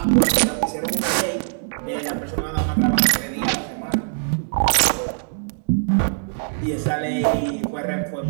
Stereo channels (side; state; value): left; silent; digital silence